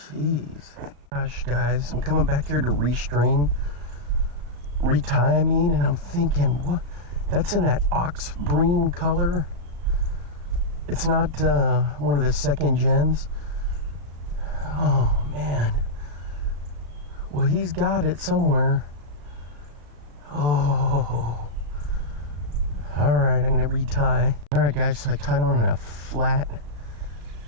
Gosh, guys, I'm coming back here to retie, I mean, and I'm thinking, what? That's in that ox breen color. It's not one of the second gens. Oh, man. Well, he's got it somewhere. Oh. Alright, I'm gonna retie. Alright, guys, so I tied on a flat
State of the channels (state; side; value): late; left; 35 ms